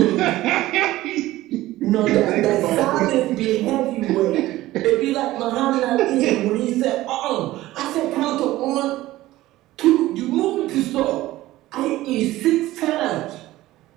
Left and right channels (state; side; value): quieter; left; 16.5 dB